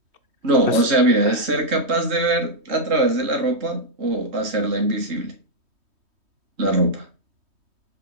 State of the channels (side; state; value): left; late; 3.2 ms